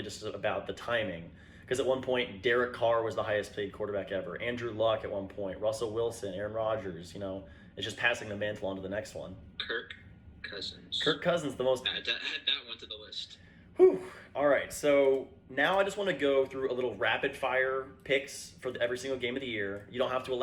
just about the timing. Because at one point, Derek Carr was the highest paid quarterback ever. Andrew Luck at one point. Russell Wilson, Aaron Rodgers. It's just passing the mantle on to the next one. Kirk Cousins. Kirk Cousins, the most. Add that one to the list. Whew. All right, so now I just want to go through a little rapid fire picks for every single game of the year. You don't have to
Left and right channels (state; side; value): identical; both; correlation 1.00